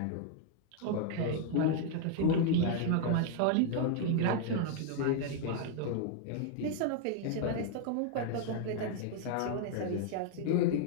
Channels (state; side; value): different; both; correlation 0.00